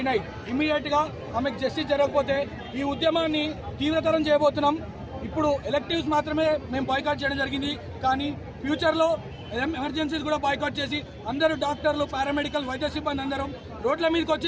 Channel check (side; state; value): both; identical; correlation 1.00